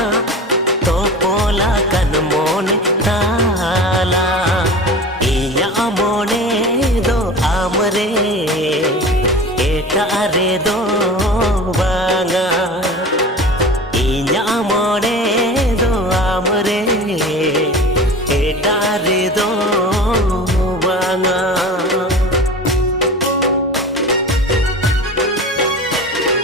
तो पोला कन मोने ताला इन्या मोने दो आमरे एटा रे दो बांगा इन्या मने दो आमरे एटा रे दो बांगा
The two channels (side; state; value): both; normal; correlation 0.35